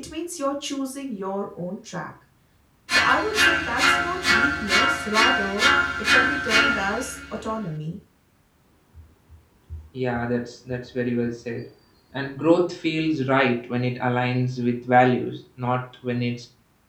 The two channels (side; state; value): both; identical; correlation 1.00